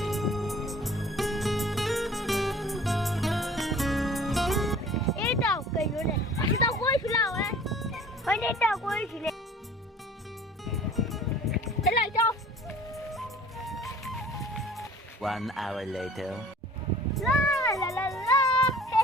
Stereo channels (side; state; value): both; normal; correlation 0.48